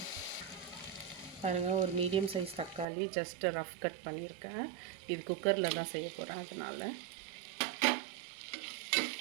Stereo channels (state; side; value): drops out; left; at 2.9 s